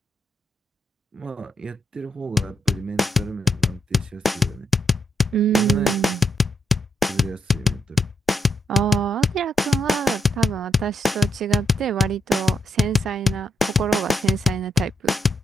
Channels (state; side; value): normal; both; correlation 0.79